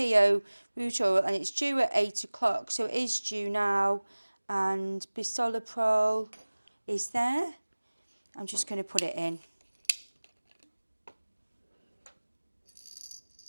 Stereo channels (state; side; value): inverted; both; correlation -1.00